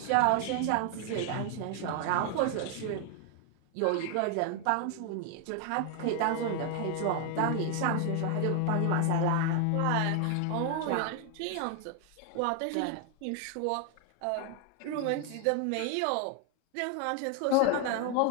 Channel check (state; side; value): different; both; correlation 0.01